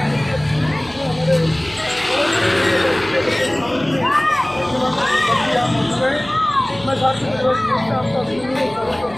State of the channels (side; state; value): right; noise; hum, 21 dB below the sound